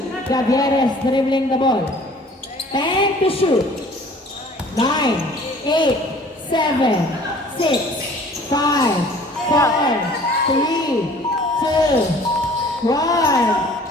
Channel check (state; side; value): normal; both; correlation 0.51